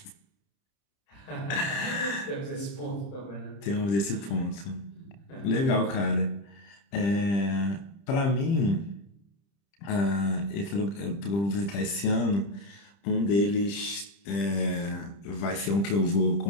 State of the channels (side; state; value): right; late; 30 ms